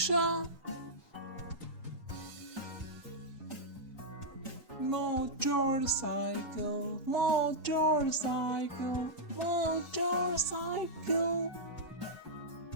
Motorcycle, motorcycle, motorcycle,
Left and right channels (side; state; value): both; normal; correlation -0.08